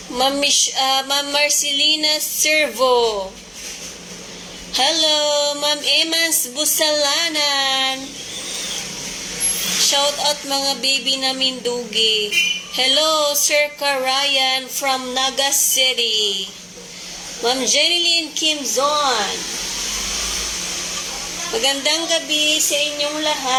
Ma'am Marcelina Servo. Hello, Ma'am Emans Busalanan. Shout out mga baby namin dugi. Hello, Sir Karayan from Naga City. Ma'am Jeneline Kimzon. Magandang gabi sa inyong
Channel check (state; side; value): identical; both; correlation 1.00